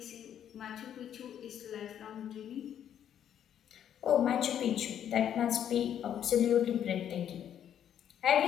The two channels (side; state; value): right; quieter; 9.8 dB